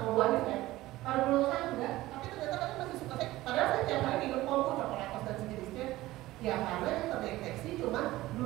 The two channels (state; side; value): quieter; left; 17.2 dB